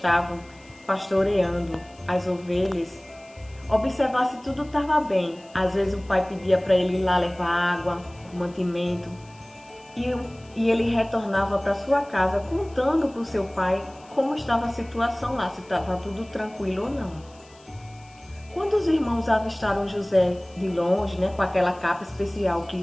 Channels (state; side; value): noise; left; hiss, 27 dB below the sound